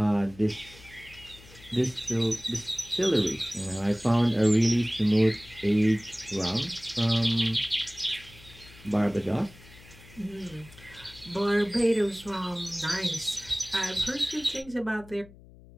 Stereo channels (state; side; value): noise; left; hum, 22 dB below the sound